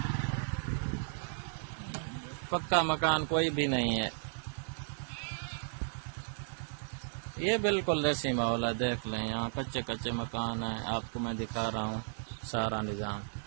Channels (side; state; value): left; silent; digital silence